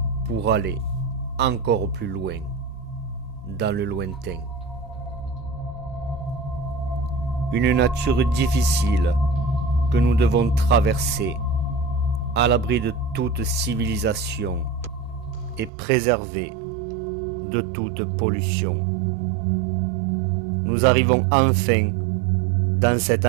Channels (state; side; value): drops out; left; at 15.7 s